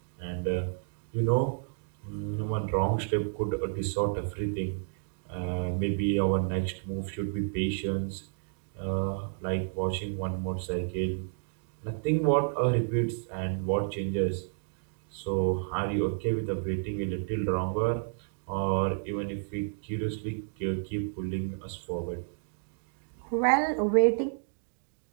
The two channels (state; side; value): silent; left; digital silence